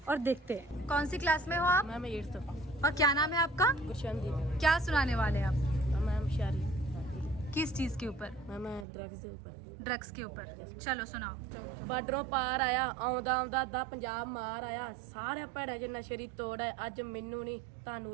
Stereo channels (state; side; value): drops out; left; at 8.8 s